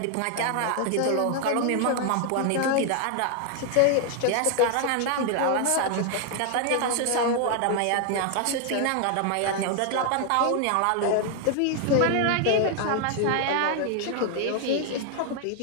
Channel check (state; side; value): different; both; correlation 0.00